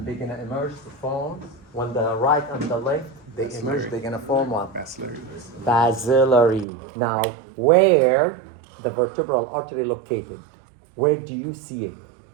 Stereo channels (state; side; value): drops out; left; at 6.7 s